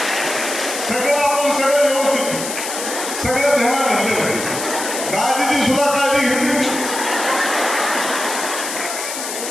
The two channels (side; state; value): left; noise; hiss, 6 dB below the sound